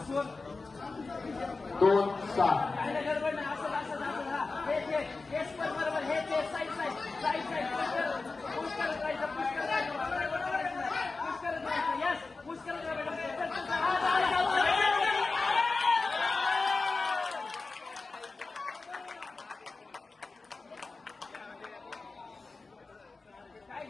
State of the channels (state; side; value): quieter; right; 3.9 dB